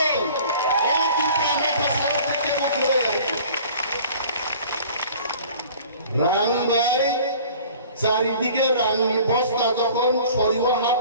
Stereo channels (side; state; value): both; inverted; correlation -0.47